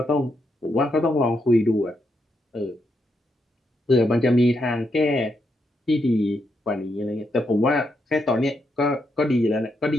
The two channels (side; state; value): both; normal; correlation 0.80